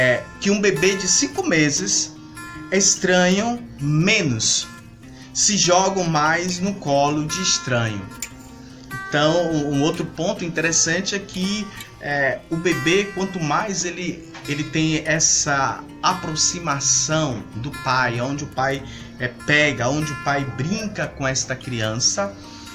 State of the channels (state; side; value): identical; both; correlation 1.00